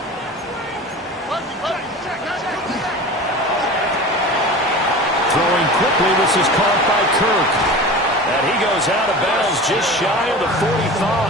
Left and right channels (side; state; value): both; normal; correlation 0.35